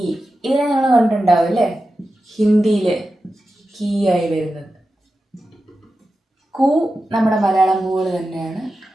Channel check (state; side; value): normal; both; correlation 0.92